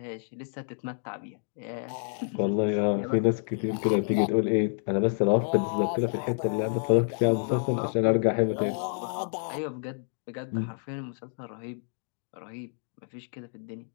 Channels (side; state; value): right; silent; 59 dB below the other